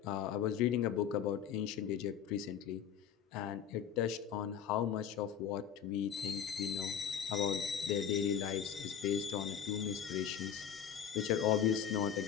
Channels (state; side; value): quieter; right; 8.6 dB